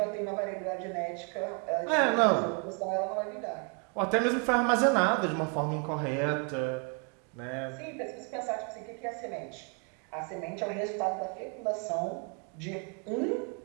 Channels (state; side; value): quieter; left; 38.5 dB